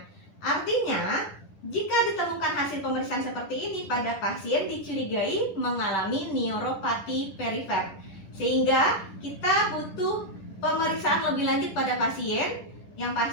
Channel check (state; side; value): late; right; 10 ms